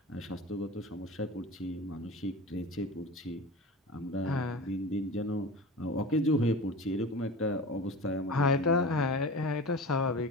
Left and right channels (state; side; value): normal; both; correlation 0.33